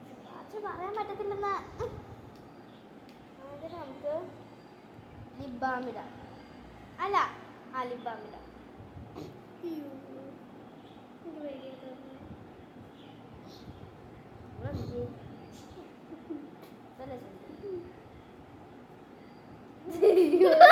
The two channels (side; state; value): both; identical; correlation 1.00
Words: പറയാൻ പറ്റത്തില്ലെന്നാ. അതിന് നമുക്ക് ലിപ് ബാം ഇടാം. അല്ല ലിപ് ബാം ഇടാം.